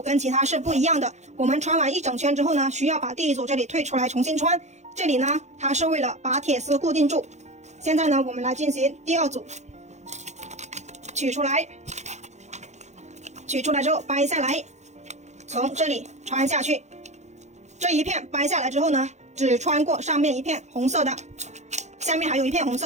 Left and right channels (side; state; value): left; late; 0.33 ms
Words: 跟其他是不一样的。我们穿完一整圈之后呢，需要把第一组这里退出来重新穿。这里呢，它是为了把铁丝固定住。现在呢，我们来进行第2组，取出来，取出来之后掰下来，从这里穿下去。这一片掰下来之后呢，只穿过上面一片红色的，下面还有一片红